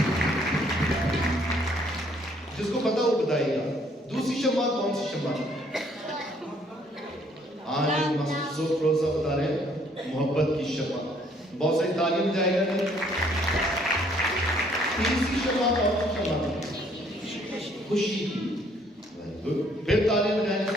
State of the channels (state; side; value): normal; both; correlation 0.64